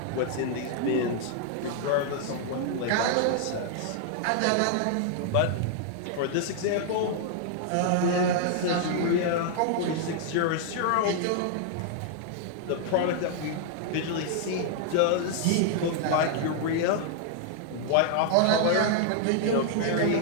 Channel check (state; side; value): different; both; correlation -0.01